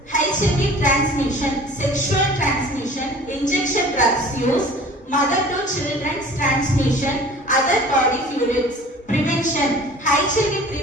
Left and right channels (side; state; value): both; normal; correlation 0.46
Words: HIV transmission: sexual transmission, injection drugs use, mother to children's transmission, other body fluids. Prevention: HIV